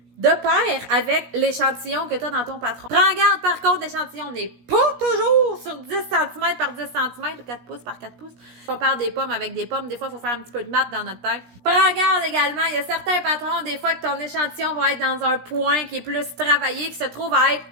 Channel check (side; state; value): left; late; 17 ms